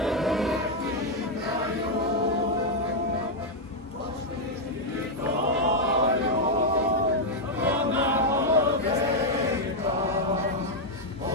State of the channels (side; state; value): both; normal; correlation -0.01